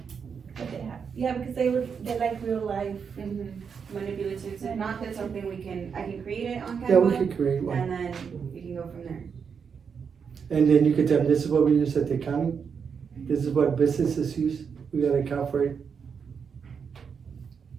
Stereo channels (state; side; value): quieter; left; 6.4 dB